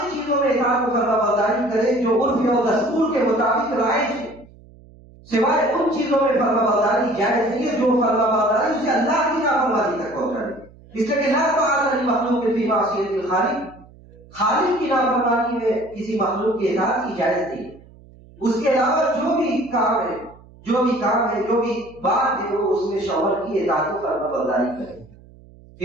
چیزوں میں اطاعت و فرمانبرداری کرے جو عرف اور دستور کے مطابق رائج ہے، سوائے ان چیزوں میں فرمانبرداری جائز نہیں ہے جو فرمانبرداری اسے اللہ کی نافرمانی تک پہنچائے۔ اس لیے کہ لا طاعۃ لمخلوق فی معصیۃ الخالق، خالق کی نافرمانی میں کسی مخلوق کی اطاعت کی جائز نہیں ہے۔ اس کے علاوہ جو بھی کام ہے، جو بھی بات ہے، وہ اس میں شوہر کی اطاعت و فرمانبرداری کرے۔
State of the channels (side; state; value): right; noise; hum, 24 dB below the sound